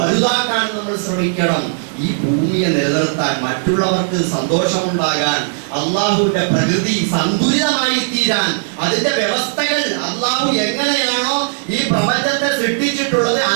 നമ്മൾ ശ്രമിക്കണം. ഈ ഭൂമിയെ നിലനിർത്താൻ, മറ്റുള്ളവർക്ക് സന്തോഷമുണ്ടാകാൻ, അള്ളാഹുവിന്റെ പ്രകൃതി സന്തുലിതമായി തീരാൻ, അതിന്റെ വ്യവസ്ഥകൾ അള്ളാഹു എങ്ങനെയാണോ ഈ പ്രപഞ്ചത്തെ സൃഷ്ടിച്ചിട്ടുള്ളത്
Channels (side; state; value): left; silent; digital silence